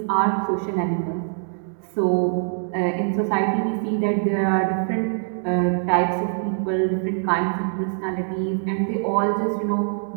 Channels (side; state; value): left; silent; digital silence